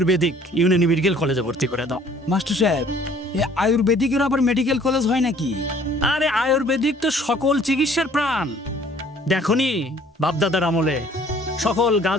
ইউনানি মেডিকেল কলেজে ভর্তি করে দাও। মাস্টার সাহেব, এই আয়ুর্বেদিকের আবার মেডিকেল কলেজ হয় নাকি? আরে আয়ুর্বেদিক তো সকল চিকিৎসার প্রাণ। দেখনি বাপদাদার আমলে সকল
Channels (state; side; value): normal; both; correlation 0.56